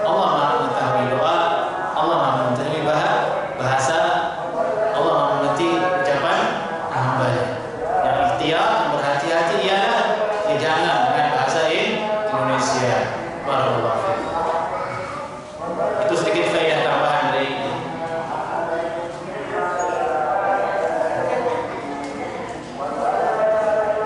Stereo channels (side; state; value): both; identical; correlation 1.00